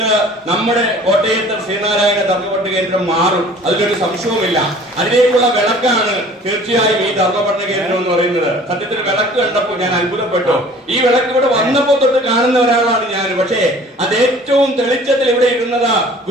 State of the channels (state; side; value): normal; both; correlation 0.49